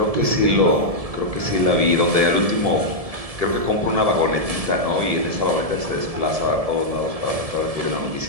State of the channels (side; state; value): left; late; 1.7 ms